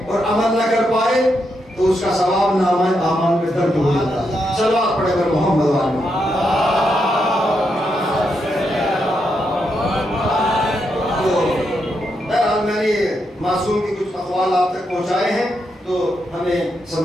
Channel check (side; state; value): both; normal; correlation 0.82